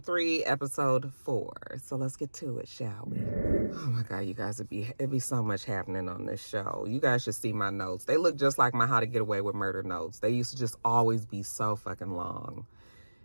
3, Episode 4. So let's get to it, shall we? Oh my God, you guys, it'd be so much happening on this show. You guys should see my notes. They look just like my How to Get Away with Murder notes. They used to just always be so fucking long.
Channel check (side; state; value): both; inverted; correlation -1.00